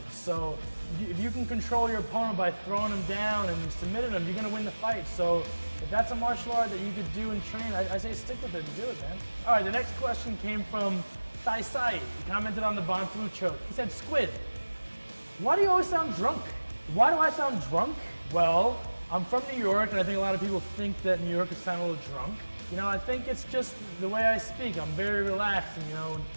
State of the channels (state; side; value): inverted; both; correlation -1.00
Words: So if you can control your opponent by throwing them down and submitting them, you're going to win the fight. So if that's a martial art that you could do and train, I say stick with it and do it, man. All right, the next question came from Sai Sai. He commented on the Von Flue choke. He said, Squid, why do you always sound drunk? Why do I sound drunk? Well, I'm from New York, and I think a lot of people think that New Yorkers sound a little drunk. I think it's just the way I speak. I'm very relaxed, and when